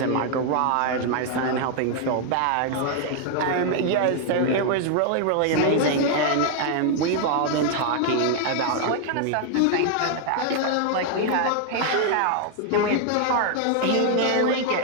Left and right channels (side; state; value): both; different; correlation 0.00